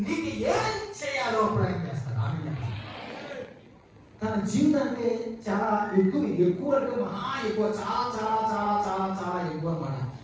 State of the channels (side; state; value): both; identical; correlation 1.00